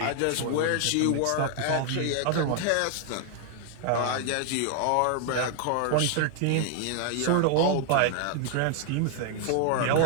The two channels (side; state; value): both; different; correlation 0.00